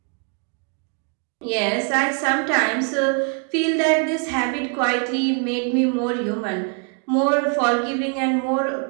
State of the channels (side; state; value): left; quieter; 39.4 dB